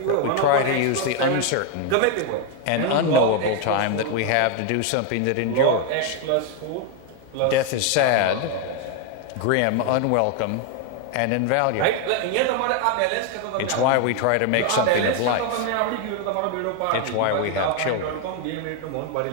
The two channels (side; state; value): both; different; correlation 0.01